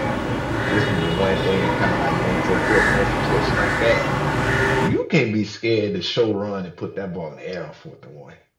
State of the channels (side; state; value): both; identical; correlation 1.00